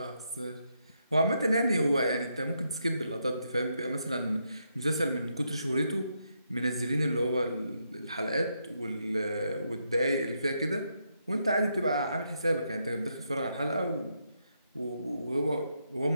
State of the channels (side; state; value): both; inverted; correlation -0.80